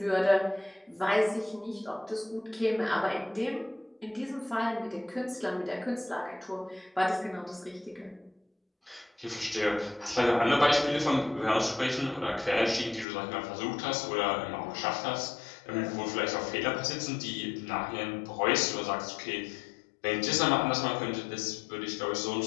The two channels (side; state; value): right; drops out; at 13.1 s